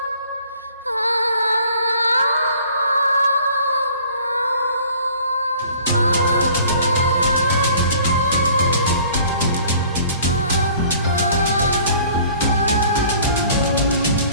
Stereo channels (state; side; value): inverted; both; correlation -0.52